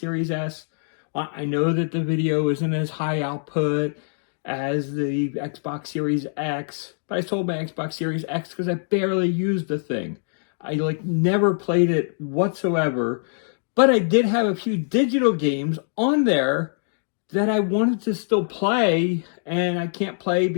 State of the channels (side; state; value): right; silent; digital silence